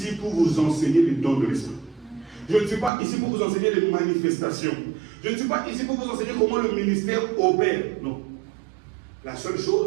pour vous enseigner les dons de l'esprit. Je ne suis pas ici pour vous enseigner les manifestations. Je ne suis pas ici pour vous enseigner comment le ministère opère. Non. La seule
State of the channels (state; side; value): drops out; left; at 2.9 s